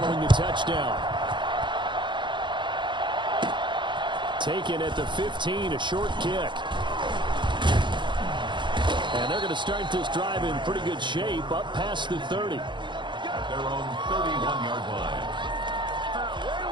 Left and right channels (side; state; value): left; late; 0.23 ms